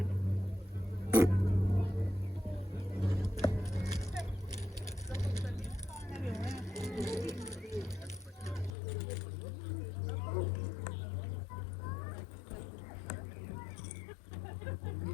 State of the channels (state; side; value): drops out; right; at 8.7 s